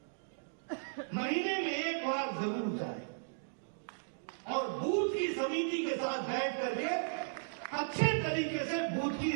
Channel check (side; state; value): left; silent; digital silence